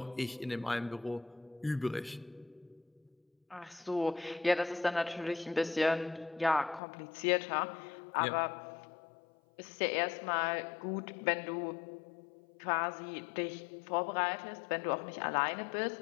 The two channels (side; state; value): right; drops out; at 6.8 s